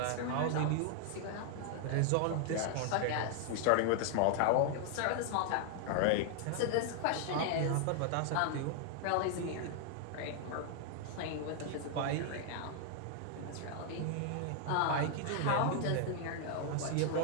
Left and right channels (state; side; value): different; both; correlation 0.00